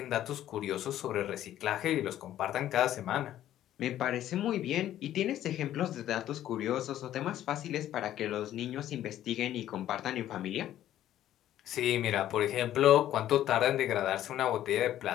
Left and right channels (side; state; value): right; quieter; 12.3 dB